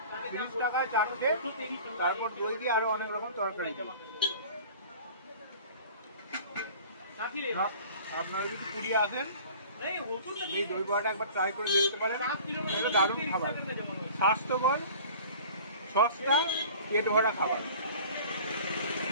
30 টাকায় চারটে, তারপর দই দিয়ে আরো অনেক রকম তরকারি। আপনারা যদি পুরী আসেন এই দই বড়াটা একবার ট্রাই করে দেখতে পারেন। এটা দারুণ খাবার, স্বাস্থ্যকর, সস্তা, পেট ভরা খাবার।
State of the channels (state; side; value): inverted; both; correlation -0.44